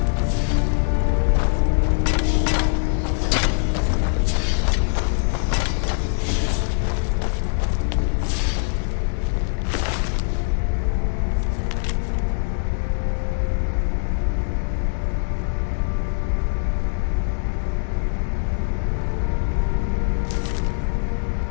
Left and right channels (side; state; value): right; silent; digital silence